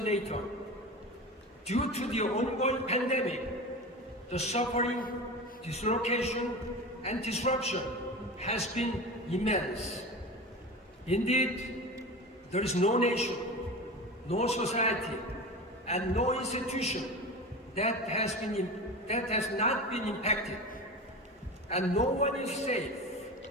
Due to the ongoing pandemic, the suffering, dislocation, and disruption has been immense. Indeed, there is no nation, no society, and no institution that has not been impacted, and no one is safe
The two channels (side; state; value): both; normal; correlation 0.29